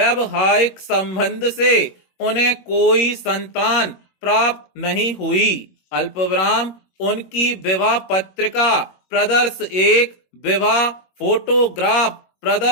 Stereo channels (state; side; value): late; right; 21 ms